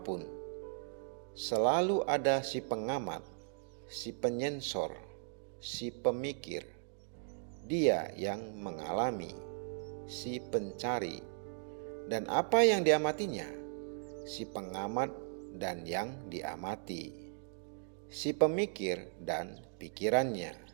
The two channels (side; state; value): left; silent; digital silence